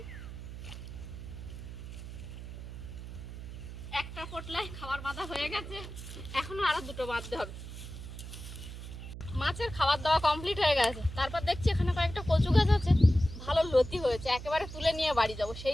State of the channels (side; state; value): right; noise; hum, 10 dB below the sound